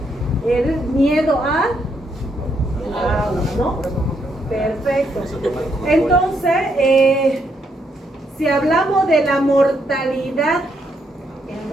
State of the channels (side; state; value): both; normal; correlation 0.76